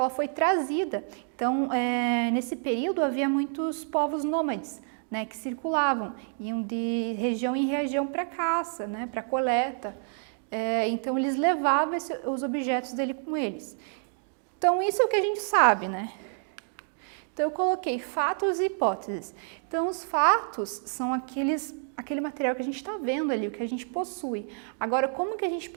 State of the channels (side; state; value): left; silent; 59 dB below the other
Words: foi trazida. Então, nesse período havia muitos povos nômades, né, que circulavam, iam de região em região para caça, né, para coleta. Então, eles levavam os objetos dele com eles. Então, isso é o que a gente sabe, né? Então, eu coloquei fatos e hipóteses. Então, os fatos são aquele material que a gente está vendo ali, o que a gente possui. Agora, como que a gente